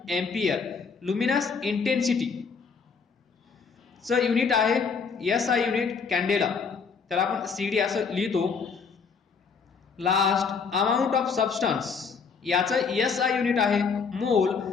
एम्पियर, लुमिनस इंटेन्सिटी चं युनिट आहे SI युनिट कॅन्डेला, त्याला आपण CD असं लिहितो. लास्ट, अमाउंट ऑफ सबस्टन्स, याचं SI युनिट आहे मोल,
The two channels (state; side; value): quieter; right; 5.5 dB